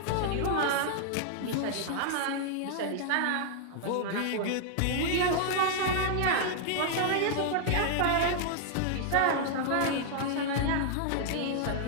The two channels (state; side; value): different; both; correlation -0.01